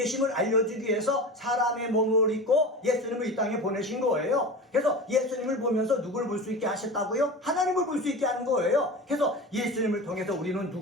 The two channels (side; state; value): both; normal; correlation 0.30